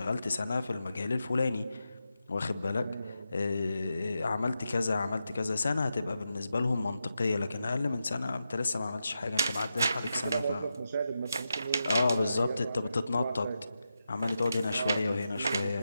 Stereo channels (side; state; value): both; inverted; correlation -0.88